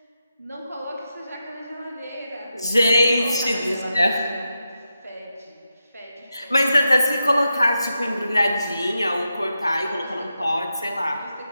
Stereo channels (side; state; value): both; inverted; correlation -0.88